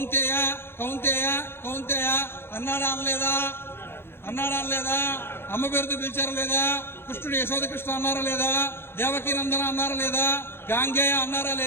కౌంతేయ కౌంతేయ అన్నాడా అనలేదా? అన్నాడా లేదా? అమ్మ పేరుతో పిలిచారా లేదా? కృష్ణుడు యశోద కృష్ణ అన్నారా లేదా? దేవకీ నందన అన్నారా లేదా? గాంగేయ అన్నారా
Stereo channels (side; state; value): right; late; 0.11 ms